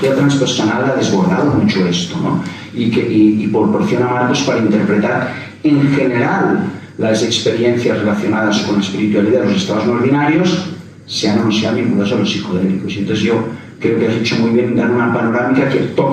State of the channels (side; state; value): both; identical; correlation 1.00